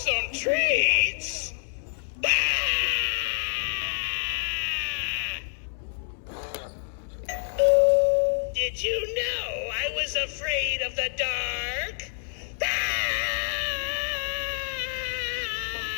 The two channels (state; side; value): silent; right; 59 dB below the other